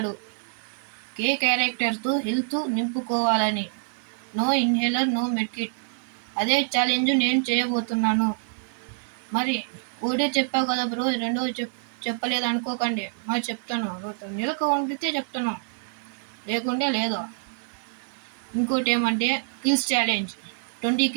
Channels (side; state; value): left; silent; digital silence